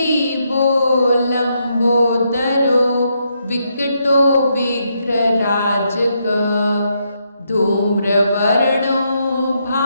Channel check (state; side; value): inverted; both; correlation -0.78